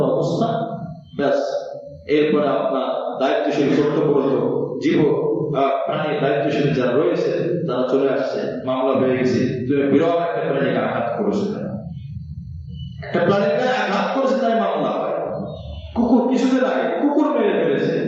অবস্থা, ব্যাস। এরপরে আপনার দায়িত্বশীল কর্তব্যরত জীব প্রাণী দায়িত্বশীল যারা রয়েছে তারা চলে আসছে, মামলা হয়ে গেছে। তুমি বিরল একটা প্রাণীকে আঘাত করেছে, একটা প্রাণীর গায়ে আঘাত করেছে, তাই মামলা হয়। কুকুর কিছুদিন আগে কুকুর মেরে ফেলেছে,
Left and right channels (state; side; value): identical; both; correlation 1.00